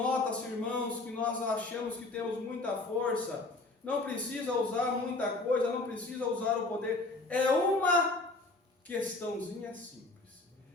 irmãos, que nós achamos que temos muita força. Não precisa usar muita coisa, não precisa usar o poder. É uma questãozinha simples.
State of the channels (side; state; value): right; quieter; 3.2 dB